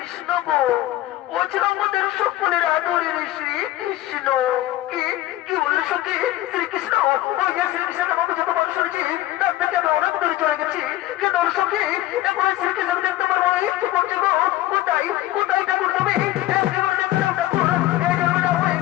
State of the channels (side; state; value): right; quieter; 15.3 dB